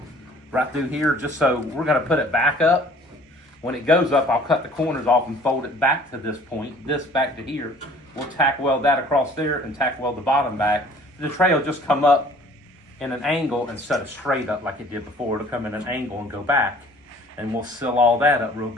right through here just so we're going to put it back up. When it goes up, I'll cut the corners off and fold it back to this point, this back to here. We'll tack weld that across there and tack weld the bottom back. The tray will just come up in an angle instead of straight up like it did before. It'll come in an angle and go back. And we'll seal all that up real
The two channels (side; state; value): both; normal; correlation 0.52